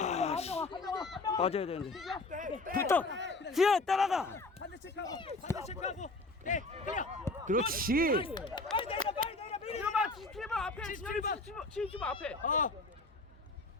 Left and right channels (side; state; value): right; quieter; 3.2 dB